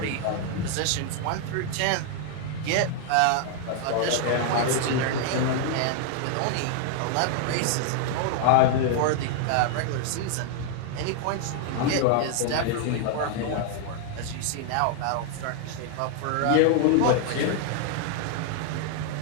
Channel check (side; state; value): both; different; correlation 0.00